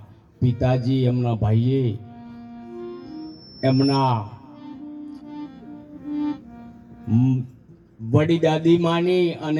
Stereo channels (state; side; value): identical; both; correlation 1.00